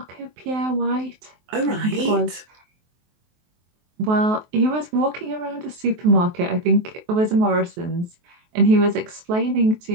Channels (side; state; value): left; late; 23 ms